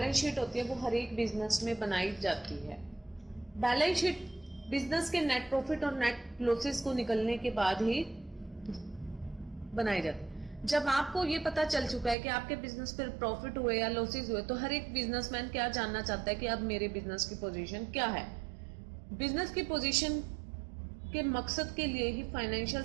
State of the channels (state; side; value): drops out; left; at 12.2 s